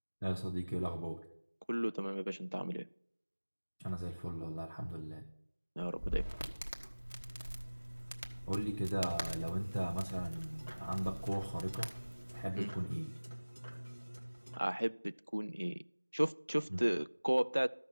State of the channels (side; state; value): both; inverted; correlation -1.00